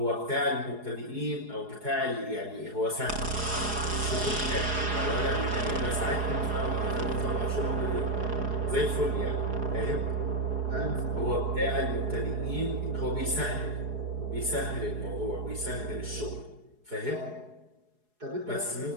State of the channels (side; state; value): left; late; 4.8 ms